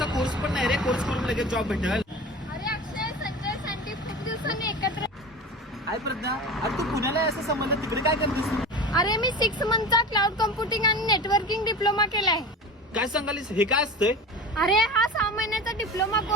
कोर्स पण नाही रे, कोर्स करून लगेच जॉब भेटेल. अरे अक्षय, संजय, सँडी खूप दिवसांनी एकत्र. काय प्रज्ञा, अरे तू पुण्याला आहे असं समजलं, तिकडे काय करतेस? अरे मी 6 मंथचा क्लाउड कम्प्युटिंग आणि नेटवर्किंग डिप्लोमा केलाय. काय सांगालीस, हे काय असतंय? अरे हा 6 महिन्याचा डिप्लोमा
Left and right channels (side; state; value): both; normal; correlation 0.32